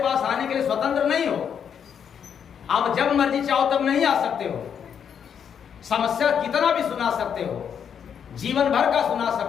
आने के लिए स्वतंत्र नहीं हो। आप जब मर्जी चाहो तब नहीं आ सकते हो। समस्या कितना भी सुना सकते हो, जीवन भर का सुना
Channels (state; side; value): quieter; right; 7.8 dB